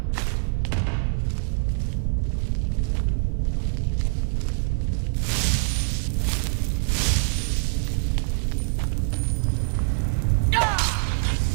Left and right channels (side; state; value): left; silent; digital silence